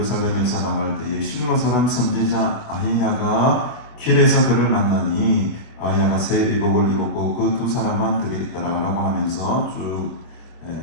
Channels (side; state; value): right; late; 25 ms